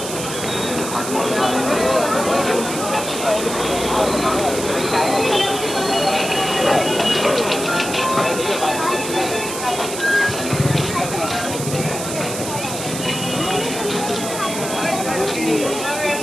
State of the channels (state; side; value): noise; right; hiss, 7 dB below the sound